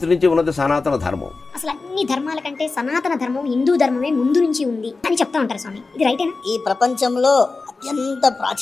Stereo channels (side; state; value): right; quieter; 3.9 dB